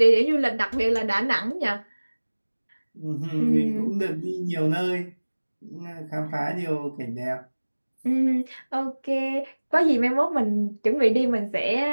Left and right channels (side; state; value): both; inverted; correlation -1.00